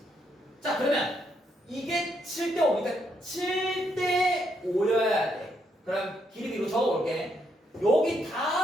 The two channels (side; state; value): both; normal; correlation 0.76